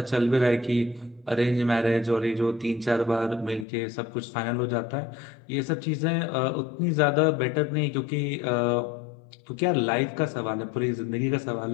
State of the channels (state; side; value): drops out; right; at 3.7 s